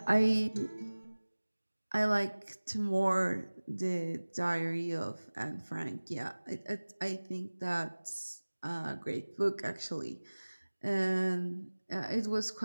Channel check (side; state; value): both; inverted; correlation -1.00